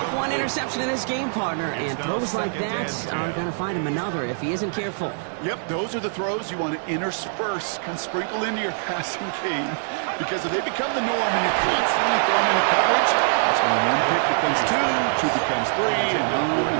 1 interception in this game, partner, and throws like that are going to find him another if he isn't careful. Yep, those are the throws you want to intersperse, kind of sprinkle into your passing game, because if they become the norm and you're constantly thrown into coverage, that's when 1 pick becomes 2, 2 becomes 3, and on.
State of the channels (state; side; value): silent; left; digital silence